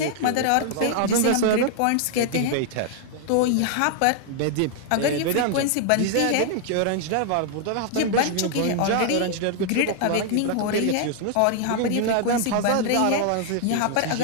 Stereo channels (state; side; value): different; both; correlation 0.00